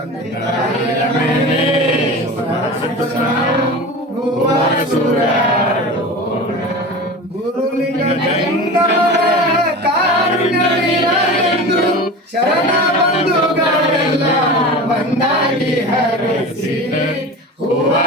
ತಾಯಿಯ ಮೇಲೆ ಹೂವ ಸೂರ್ಯೋಣ ಗುರುಲಿಂಗ ಕಾರುಣ್ಯವಿರಲೆಂದು ಶರಣ ಬಂಧುಗಳೆಲ್ಲ ಒಂದಾಗಿ ಹರಸಿ ಹೂವ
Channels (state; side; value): normal; both; correlation 0.32